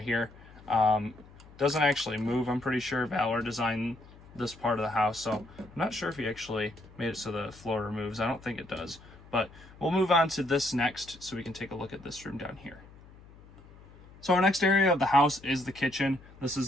here. Doesn't actually move, I'm pretty sure. Valor designed this part of the house, so I'm not sure if he actually made it so the floor removes. I don't think it does. But we'll move on to this next so we can take a look at this room down here. So our next area of the house is the kitchen. This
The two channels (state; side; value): noise; left; hum, 22 dB below the sound